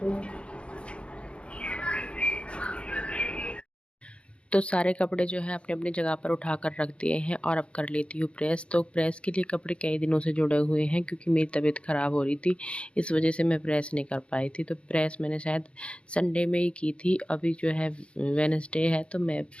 तो सारे कपड़े जो है अपने अपनी जगह पर उठा कर रख दिए हैं और अब कर लेती हूँ प्रेस। तो प्रेस के लिए कपड़े कई दिनों से जुड़े हुए हैं, क्योंकि मेरी तबीयत ख़राब हो रही थी, इस वजह से मैं प्रेस नहीं कर पाई थी। तो प्रेस मैंने शायद संडे में ही की थी, अभी जो है वेडनेसडे है, तो मैं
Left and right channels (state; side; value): late; right; 0.058 ms